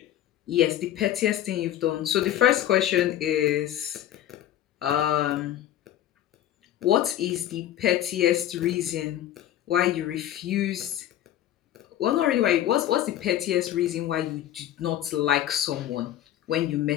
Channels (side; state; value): right; quieter; 12.3 dB